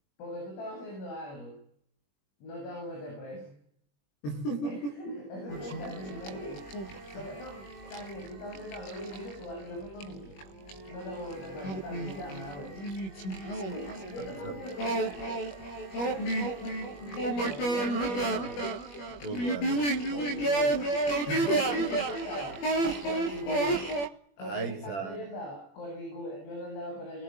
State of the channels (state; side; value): late; right; 21 ms